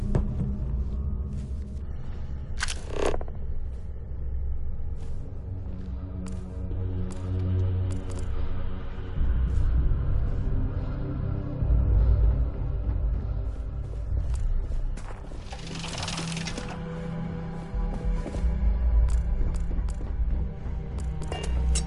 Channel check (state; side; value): identical; both; correlation 1.00